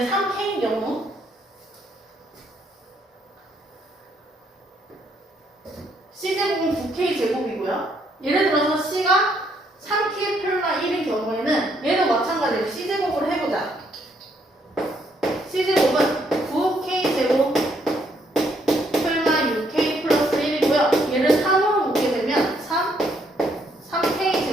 3K인 경우 C제곱은 9K제곱이고요. 예를 들어서 C가 3K 플마 1인 경우에는 얘도 마찬가지로 C제곱을 해보자. C제곱은 9K제곱 플마 6K 플러스 1이고요. 얘를 3으로 묶게 되면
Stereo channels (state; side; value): normal; both; correlation 0.71